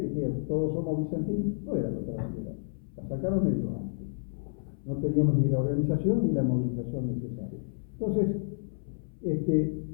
dijeron, todos somos Vicentín, no era la otra bandera. La sacaron ellos antes. No teníamos ni la organización ni la movilización necesaria. Entonces,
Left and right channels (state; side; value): silent; right; 58 dB below the other